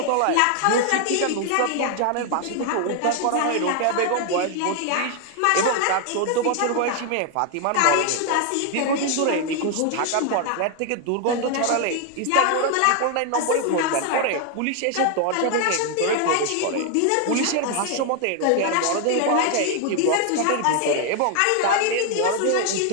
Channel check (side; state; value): both; different; correlation 0.00